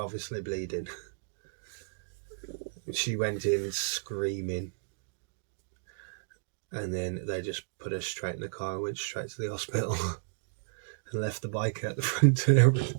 bleeding. She went in screaming, and then they just put her straight in the car and went straight to the hospital and left the bike at the front and everything.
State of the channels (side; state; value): left; silent; digital silence